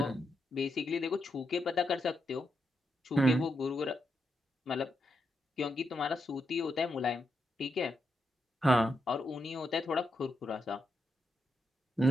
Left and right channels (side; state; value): both; normal; correlation 0.83